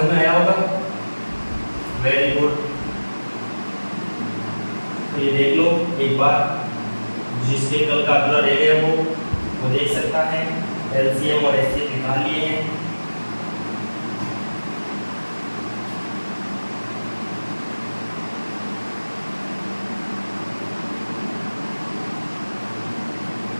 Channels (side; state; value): both; inverted; correlation -1.00